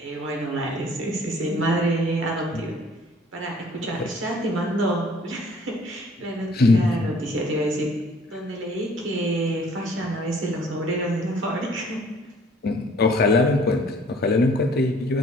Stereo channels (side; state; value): both; normal; correlation 0.56